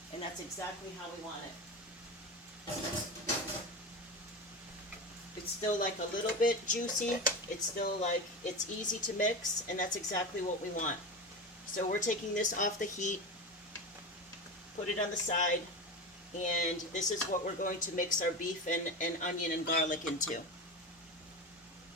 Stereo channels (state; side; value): normal; both; correlation 0.23